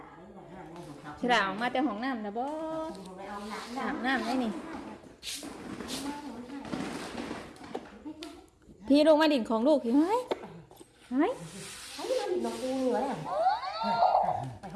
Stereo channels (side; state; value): both; identical; correlation 1.00